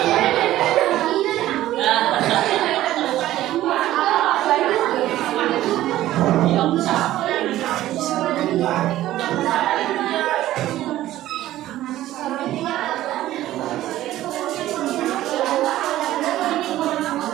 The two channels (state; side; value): quieter; left; 14.4 dB